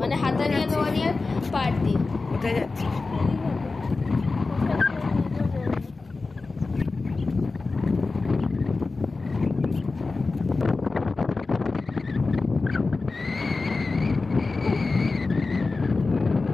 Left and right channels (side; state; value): right; quieter; 3.8 dB